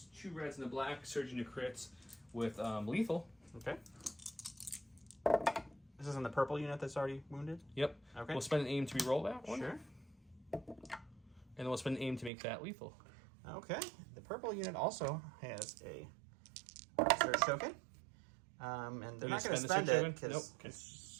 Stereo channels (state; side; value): drops out; left; at 12.3 s